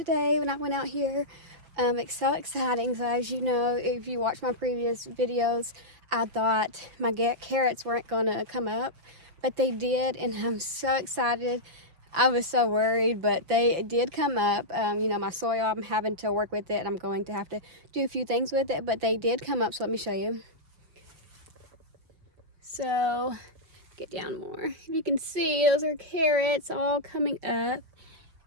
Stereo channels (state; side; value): late; left; 5.8 ms